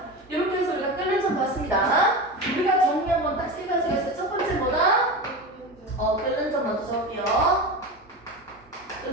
이렇게 해서 우리가 끓는 점 봤습니다. 우리가 정리 한번 딱 세 가지가 있어요. 첫 번째 뭐다? 끓는 점 먼저 적을게요.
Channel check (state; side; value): normal; both; correlation 0.25